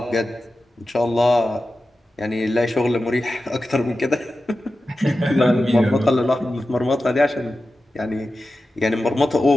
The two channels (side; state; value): both; normal; correlation 0.93